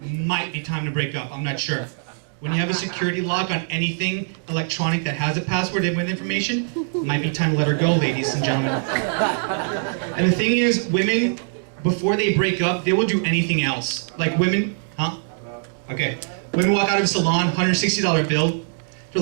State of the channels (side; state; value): left; silent; digital silence